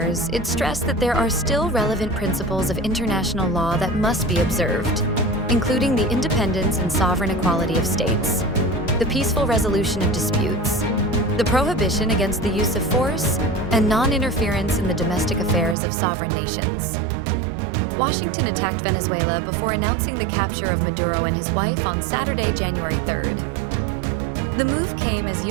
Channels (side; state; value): left; drops out; at 15.8 s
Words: it stressed that there are still relevant principles of international law that must be observed, including the independence and sovereign equality of states, the peaceful resolution of disputes, the prohibition against the use of force, and non-interference in the domestic affairs of sovereign nations. Washington attacked Venezuela before announcing the capture of Maduro and his wife on Saturday, January 3rd. The move came as